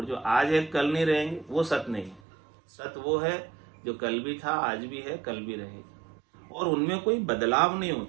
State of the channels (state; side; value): drops out; left; at 2.2 s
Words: जो आज है कल नहीं रहेंगे, वो सत्य नहीं। सत्य वो है जो कल भी था, आज भी है, कल भी रहेगा, और उनमें कोई बदलाव नहीं